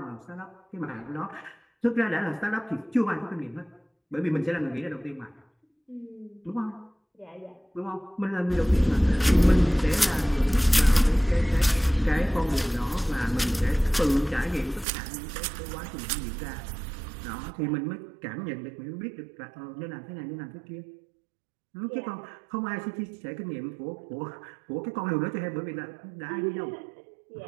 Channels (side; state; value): left; drops out; at 14.9 s